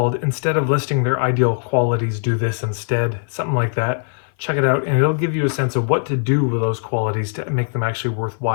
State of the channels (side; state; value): right; silent; 58 dB below the other